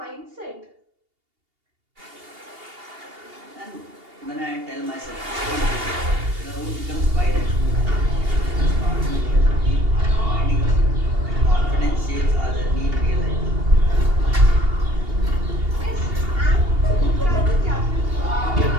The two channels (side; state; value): left; late; 2.8 ms